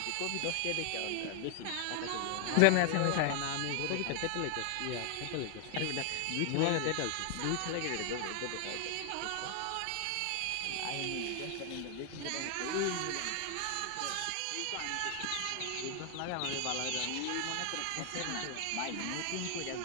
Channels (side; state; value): both; different; correlation 0.00